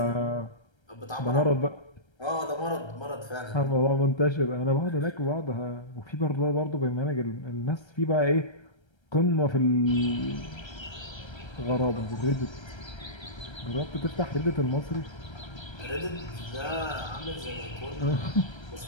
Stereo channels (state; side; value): late; right; 1.3 ms